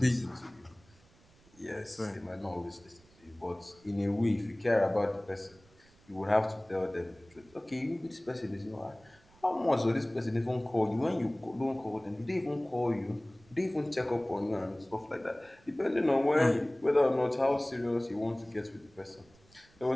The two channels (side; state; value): right; noise; rumble, 28 dB below the sound